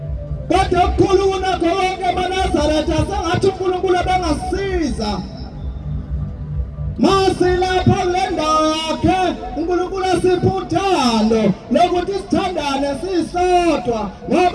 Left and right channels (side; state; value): both; identical; correlation 1.00